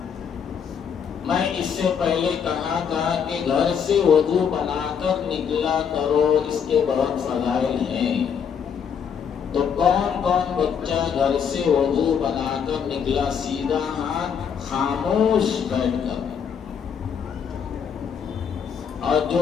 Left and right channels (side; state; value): right; quieter; 7.3 dB